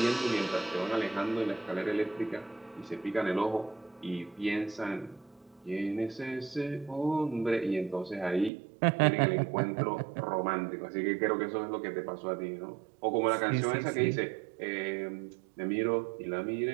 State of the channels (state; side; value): drops out; left; at 8.5 s